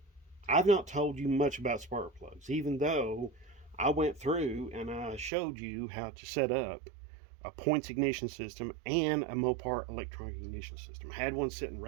I've not told you much about spark plugs, even though I went through and I showed you how to set up a points ignition system and a Mopar electronic ignition system. I had one sitting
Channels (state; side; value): drops out; left; at 5.3 s